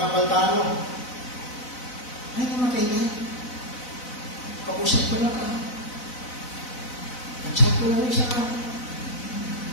napaltano, ay, namatay na. Kausap ko lang ka. At-chat ko lang isa ka.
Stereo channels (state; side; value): late; right; 4.0 ms